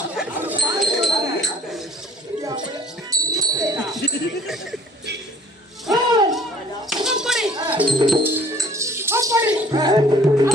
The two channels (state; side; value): normal; both; correlation 0.53